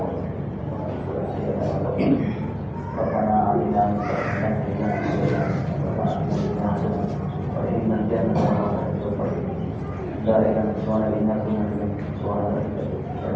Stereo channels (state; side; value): identical; both; correlation 1.00